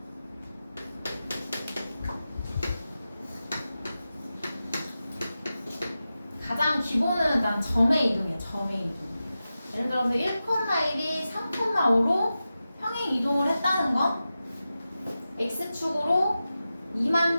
가장 기본은 난 점의 이동이야. 점의 이동. 예를 들어서 1,1이 3,5로 평행 이동을 했다는 건 x축으로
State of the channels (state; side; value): inverted; both; correlation -0.93